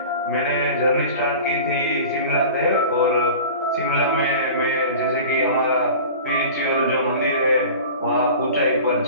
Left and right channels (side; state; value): both; inverted; correlation -0.38